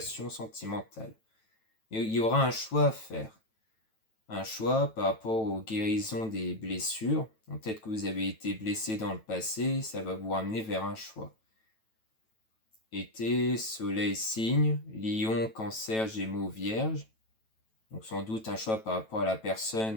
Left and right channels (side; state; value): right; late; 9.1 ms